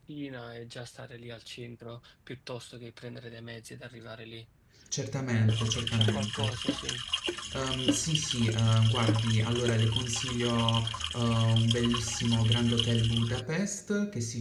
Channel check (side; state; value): both; identical; correlation 1.00